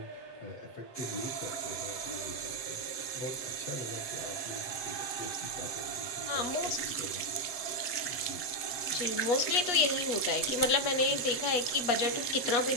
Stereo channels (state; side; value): late; right; 8.0 ms